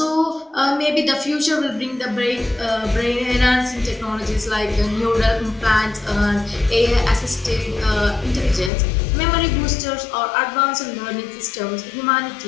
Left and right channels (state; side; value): drops out; right; at 8.7 s